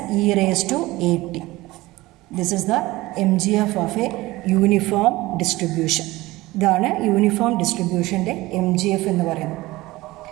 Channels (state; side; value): quieter; left; 19.4 dB